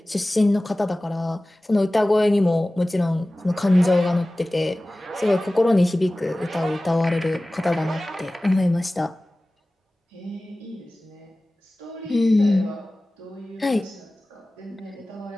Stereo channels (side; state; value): both; normal; correlation 0.97